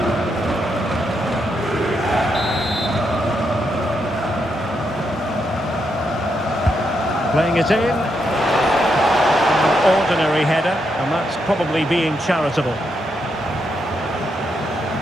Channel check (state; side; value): normal; both; correlation 0.81